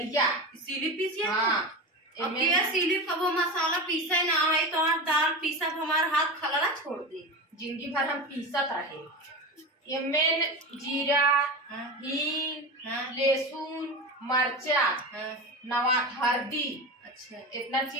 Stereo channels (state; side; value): normal; both; correlation 0.25